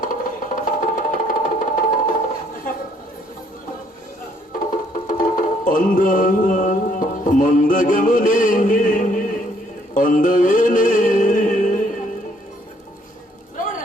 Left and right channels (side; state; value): both; normal; correlation 0.66